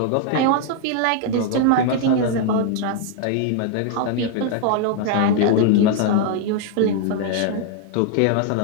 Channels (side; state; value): both; different; correlation 0.00